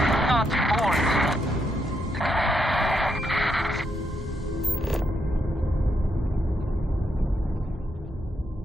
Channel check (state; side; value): normal; both; correlation 0.80